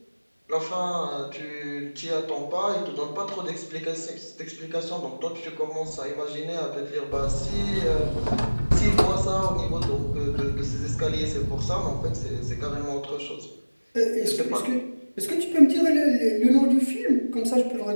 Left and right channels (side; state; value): both; inverted; correlation -1.00